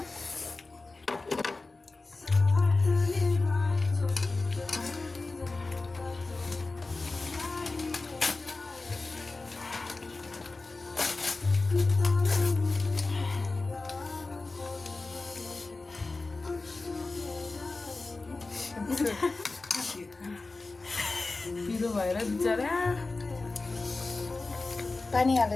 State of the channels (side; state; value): right; quieter; 3.5 dB